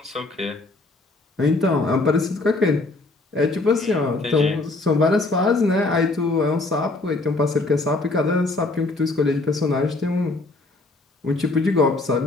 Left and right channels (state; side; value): quieter; right; 3.2 dB